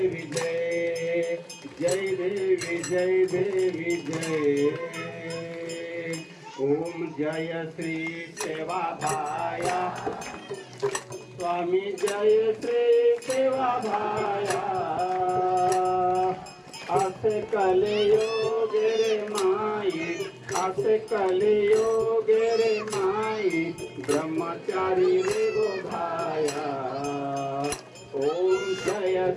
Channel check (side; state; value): both; identical; correlation 1.00